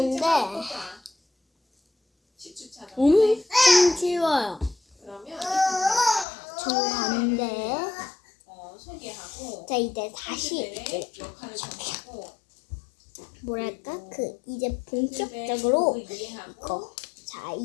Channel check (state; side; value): drops out; right; at 6.2 s